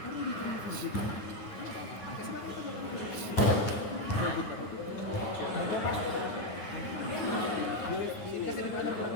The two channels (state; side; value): late; right; 9.7 ms